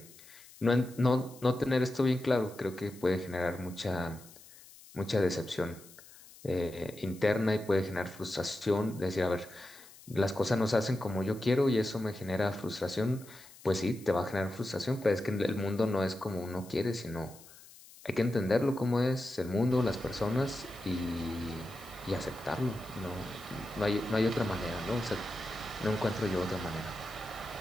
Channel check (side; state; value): left; noise; hiss, 21 dB below the sound